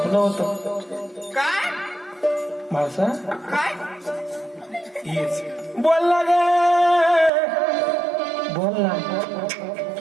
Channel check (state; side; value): drops out; left; at 7.3 s